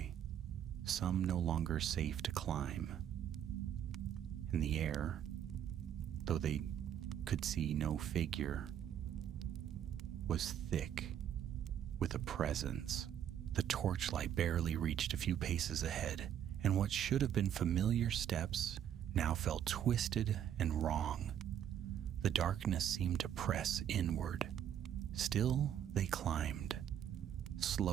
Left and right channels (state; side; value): quieter; left; 9.9 dB